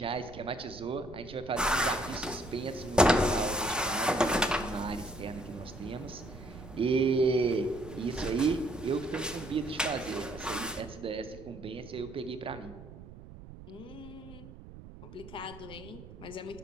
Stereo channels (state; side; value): noise; right; rumble, 16 dB below the sound